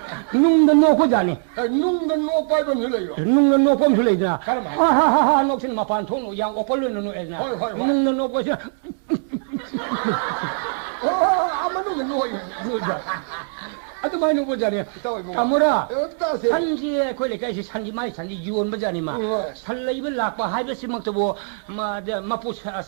노고잖아 눅도 노 빨고 늘어요 눅도 노고 늘어야 하하하 녹신 마판 통로 양 오벌르는 노에나 눅도 노고시 아무도 노요 아주 많이 노고잖아 까무라 산지에 거기까지 산지 많이 산지 유원 버자니마 살레입을 낙바 하이버스 먹도 마포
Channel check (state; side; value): silent; left; 64 dB below the other